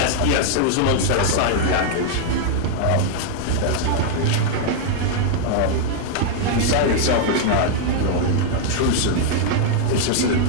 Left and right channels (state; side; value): different; both; correlation 0.00